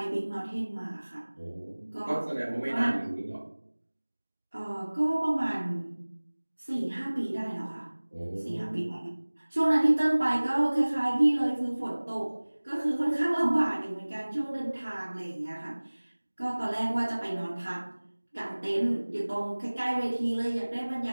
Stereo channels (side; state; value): both; inverted; correlation -1.00